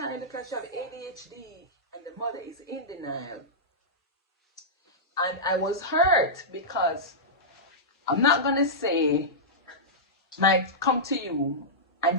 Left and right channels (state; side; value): normal; both; correlation -0.12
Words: because she have ADHD, and the mother is in denial." And I was hurt because I'm not gonna say, might come to you